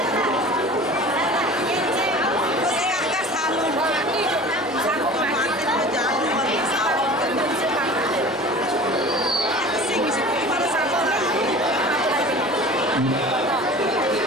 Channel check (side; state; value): both; normal; correlation 0.40